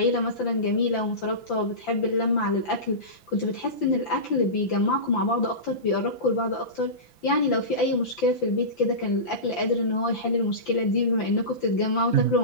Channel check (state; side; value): late; right; 5.8 ms